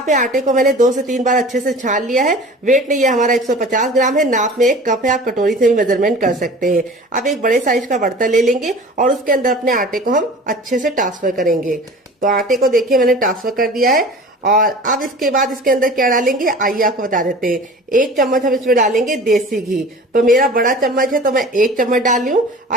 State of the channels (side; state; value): both; normal; correlation 0.41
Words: पे आटे को मैंने 2 से 3 बार अच्छे से छान लिया है। वेट नहीं है हमारा 150 ग्राम है, नाप में 1 कप है, आप कटोरी से भी मेजरमेंट कर सकते हैं। अब एक बड़े साइज का बर्तन ले लेंगे और उसके अंदर अपने आटे को हम अच्छे से ट्रांसफर करेंगे। तो आटे को देखिए मैंने ट्रांसफर कर दिया है और अब इसके बाद इसके अंदर क्या डालेंगे आइए आपको बता देते हैं। 1 चम्मच हम इसमें डालेंगे देसी घी। तो मेरा बड़ा चम्मच है तो मैं 1 चम्मच डाल रही हूँ।